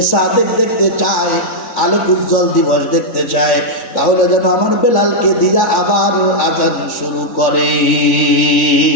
সাদেক দেখতে চায়, আলোক উজ্জ্বল দিবস দেখতে চায়, তাহলে যেন আমার বেলালকে দিয়া আবার আজান শুরু করে।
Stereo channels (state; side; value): late; right; 3.5 ms